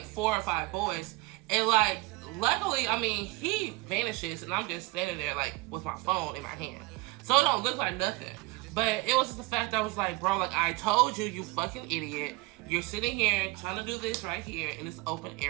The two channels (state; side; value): quieter; left; 22.9 dB